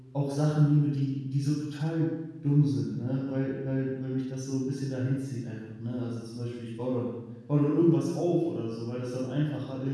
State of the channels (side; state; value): both; identical; correlation 1.00